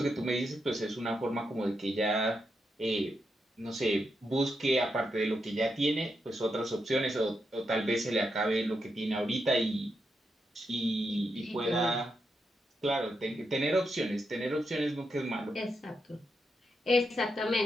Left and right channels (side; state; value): both; normal; correlation 0.84